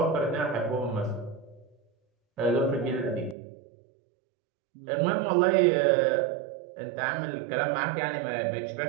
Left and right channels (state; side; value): drops out; left; at 3.4 s